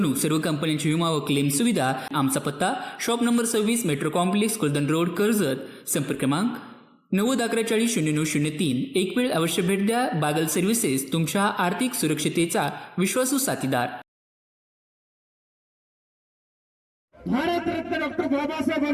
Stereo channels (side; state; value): both; identical; correlation 1.00